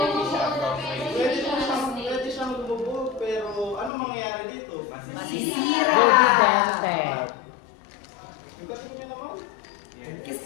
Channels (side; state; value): right; drops out; at 3.9 s